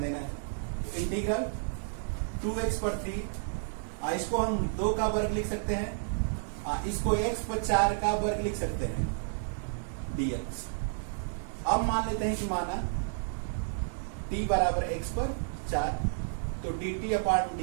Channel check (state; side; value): silent; left; digital silence